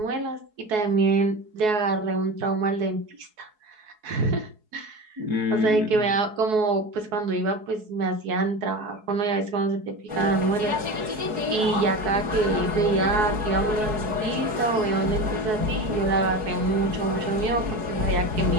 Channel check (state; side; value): late; left; 4.7 ms